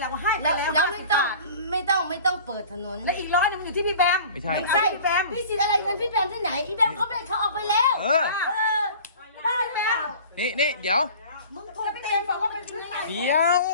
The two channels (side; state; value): both; inverted; correlation -0.43